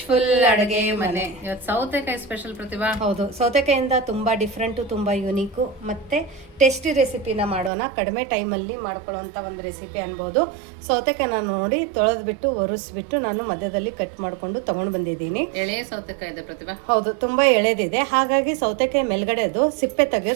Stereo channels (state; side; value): drops out; left; at 7.7 s